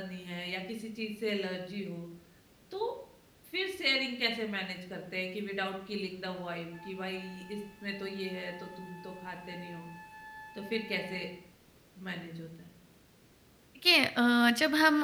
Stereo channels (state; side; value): identical; both; correlation 1.00